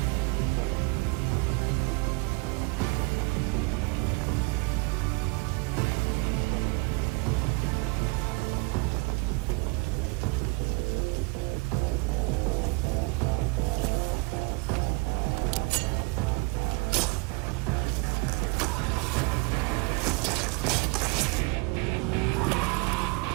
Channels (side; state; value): left; quieter; 29.6 dB